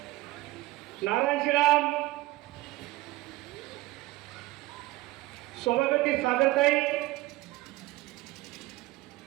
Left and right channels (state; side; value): quieter; left; 18.6 dB